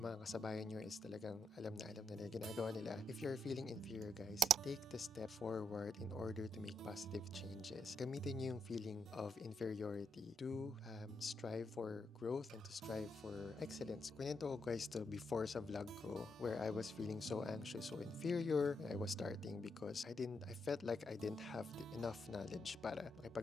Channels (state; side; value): normal; both; correlation 0.78